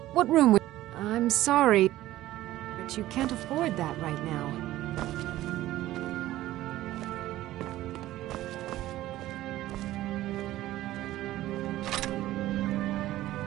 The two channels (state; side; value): quieter; left; 15.3 dB